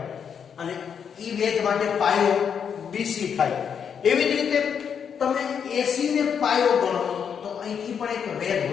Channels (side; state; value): right; quieter; 7.4 dB